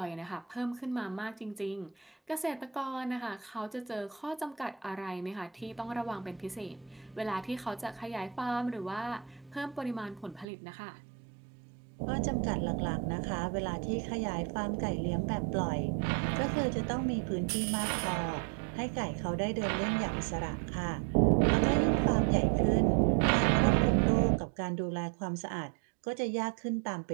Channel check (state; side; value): drops out; left; at 10.5 s